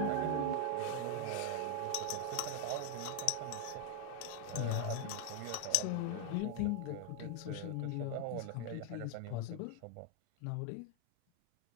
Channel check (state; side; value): different; both; correlation 0.00